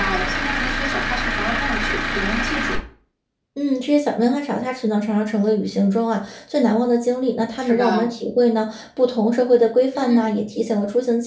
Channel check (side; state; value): both; identical; correlation 1.00